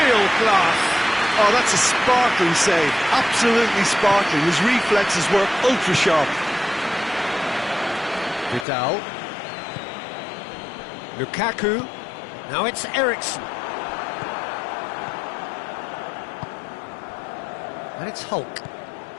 class. Oh, that's a sparkling save, absolutely sparkling. His reflexes were ultra sharp. Vidal. Lukaku. Now it's Eriksson. And it's Hulk.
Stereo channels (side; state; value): right; drops out; at 8.7 s